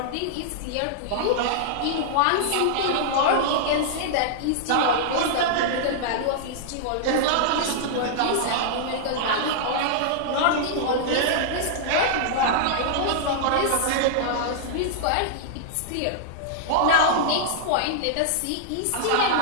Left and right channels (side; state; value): both; different; correlation -0.01